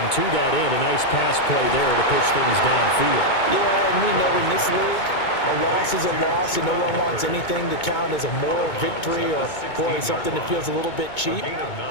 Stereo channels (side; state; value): right; late; 2.2 ms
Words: to that end, a nice pass play there to push things downfield. Yeah, and we know in this league, a loss is a loss, and no one wants anything to count as a moral victory or, boy, something that feels a little bit cheap.